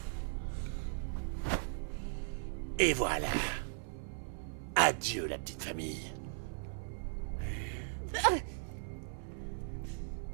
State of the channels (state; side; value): silent; left; 53 dB below the other